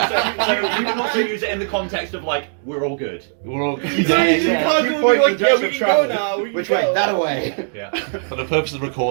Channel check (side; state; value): left; silent; digital silence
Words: So you can also use it in the context of like we're all good. We're all so you just constantly be like, yeah, we can go now. We can Which go. way? That away! Yeah. For the purpose of